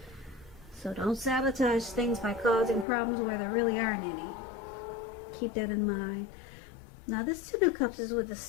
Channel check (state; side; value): drops out; right; at 2.9 s